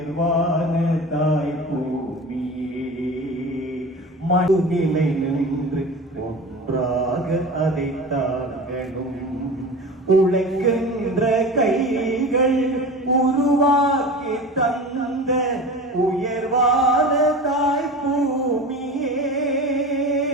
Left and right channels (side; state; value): both; normal; correlation 0.33